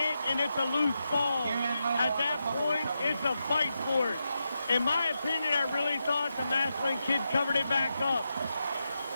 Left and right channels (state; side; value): inverted; both; correlation -0.87